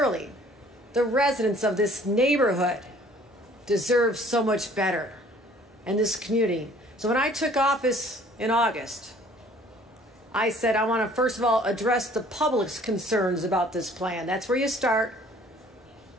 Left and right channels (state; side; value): normal; both; correlation 0.55